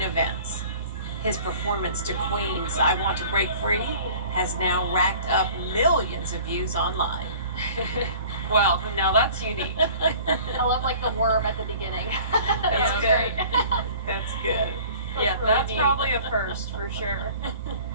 events. His performance to Queen's I Want to Break Free has now racked up millions of views online. Well, now that's unique. I love like the worm at the beginning. That's Yeah, good. That's good. Yeah, really that's neat. probably a first for sure.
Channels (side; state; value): both; inverted; correlation -0.47